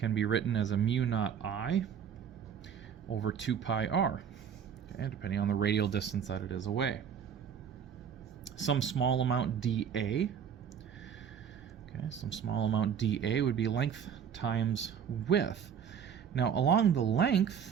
be written as a mu naught I over 2 pi r, okay, depending on the radial distance that it is away. Some small amount dA, okay, some small amount dA would be length times width. Now along the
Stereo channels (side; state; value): left; quieter; 7.9 dB